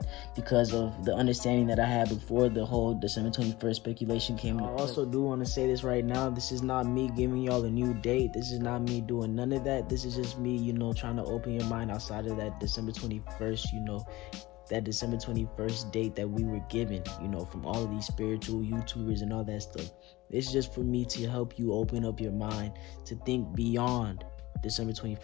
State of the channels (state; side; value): quieter; right; 19.5 dB